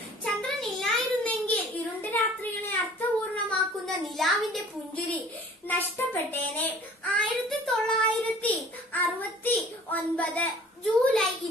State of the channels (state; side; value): normal; both; correlation 0.49